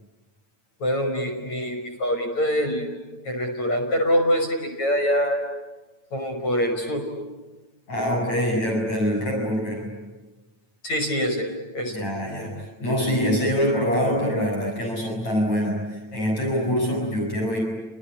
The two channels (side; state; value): right; late; 9.0 ms